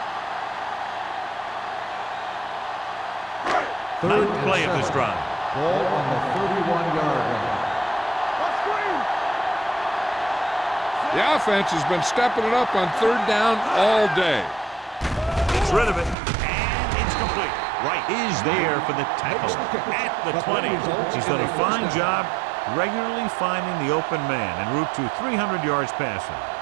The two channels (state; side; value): drops out; left; at 16.2 s